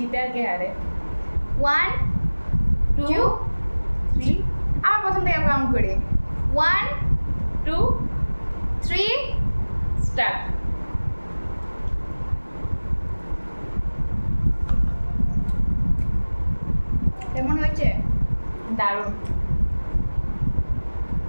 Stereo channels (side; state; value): both; inverted; correlation -1.00